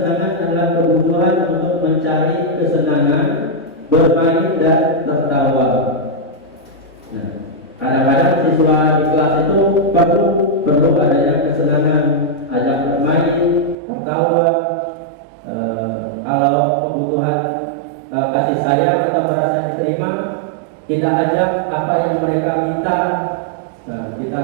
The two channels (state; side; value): drops out; left; at 13.8 s